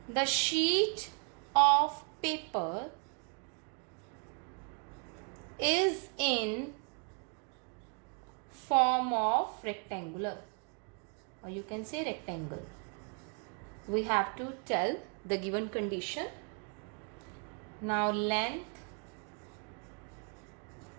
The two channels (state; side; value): quieter; left; 37.9 dB